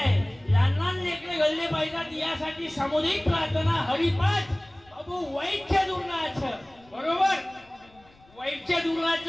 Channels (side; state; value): left; noise; rumble, 29 dB below the sound